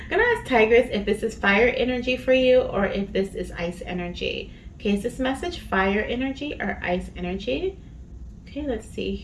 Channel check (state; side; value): identical; both; correlation 1.00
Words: gonna ask Tigress if this is fire energy for you or if this is ice energy. Okay, is this message fire energy or ice energy? Okay, let's see